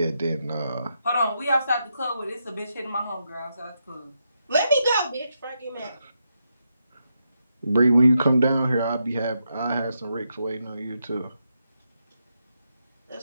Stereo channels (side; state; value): both; inverted; correlation -0.83